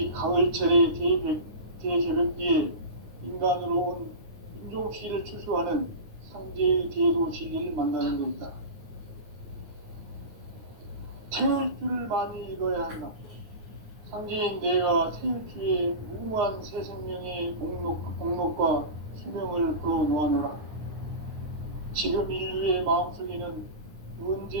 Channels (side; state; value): left; late; 9.5 ms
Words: 가을철의 대개벽기에 인간으로 온 인종시를 추수하는 상제의 대도 진리를 만나는 것이다. 태일주를 많이 읽어야 한다. 상제인 내가 태일주의 무궁한 새 생명의 목록과 수명을 불어놓아노라. 지금 인류의 마음속에는